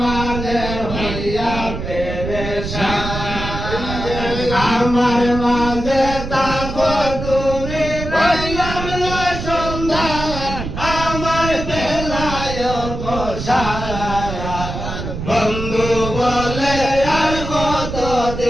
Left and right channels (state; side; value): noise; right; rumble, 6 dB below the sound